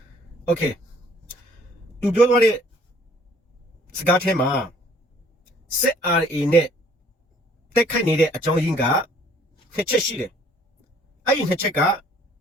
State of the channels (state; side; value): normal; both; correlation 0.58